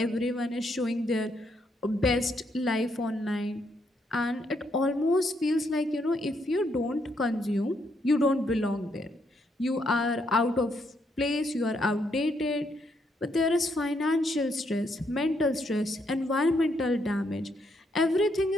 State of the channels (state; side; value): normal; both; correlation 0.75